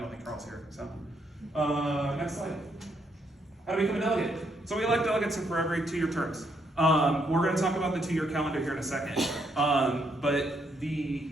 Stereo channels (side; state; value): both; normal; correlation 0.74